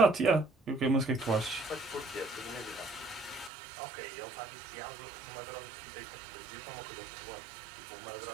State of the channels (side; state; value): left; drops out; at 3.5 s